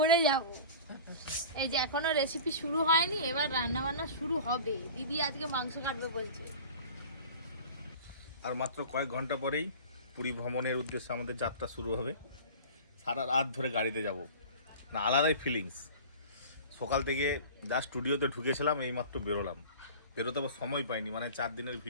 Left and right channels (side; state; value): both; inverted; correlation -0.38